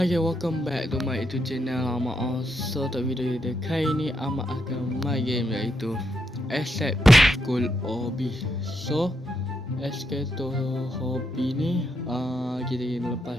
guys, welcome back to my YouTube channel Ahmad. So untuk video dia kali ni Ahmad akan main game iaitu Escape School Hobby. So Escape to Hobby ni kita kena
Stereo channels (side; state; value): both; normal; correlation 0.80